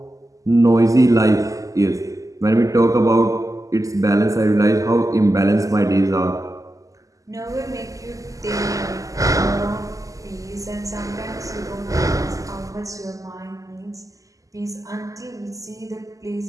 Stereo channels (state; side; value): late; left; 0.16 ms